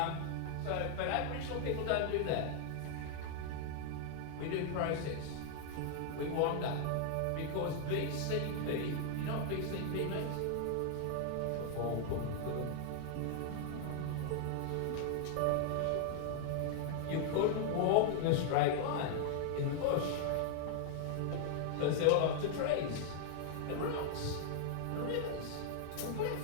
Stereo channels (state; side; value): different; both; correlation 0.00